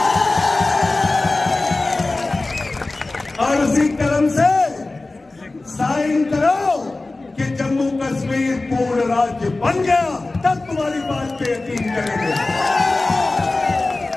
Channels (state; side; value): quieter; right; 3.2 dB